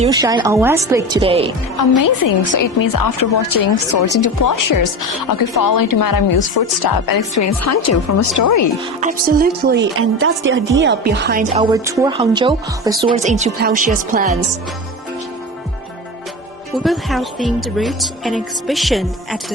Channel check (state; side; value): normal; both; correlation 0.26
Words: shine on West Lake today. Amazing! So it means after watching Swords into Plowshares, I could follow into Madame Yu's footsteps and experience Hangzhou from a story. Absolutely, and that's the idea behind our tour Hangzhou, the Swords into Plowshares plans. We will have themed routes and exhibition at